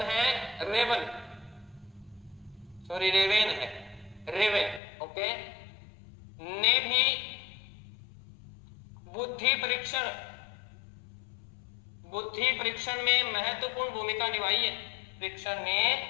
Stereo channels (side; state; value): right; drops out; at 4.8 s